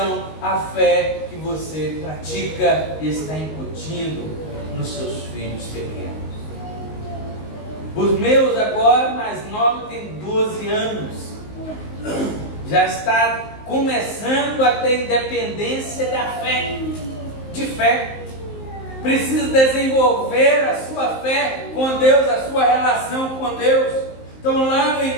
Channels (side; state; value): right; late; 19 ms